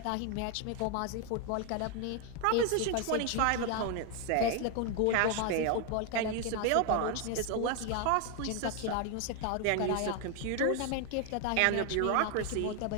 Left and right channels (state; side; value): different; both; correlation 0.01